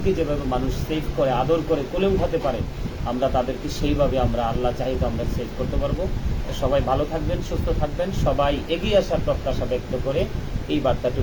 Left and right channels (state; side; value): identical; both; correlation 1.00